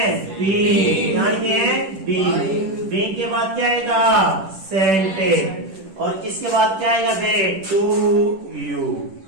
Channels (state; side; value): late; left; 10 ms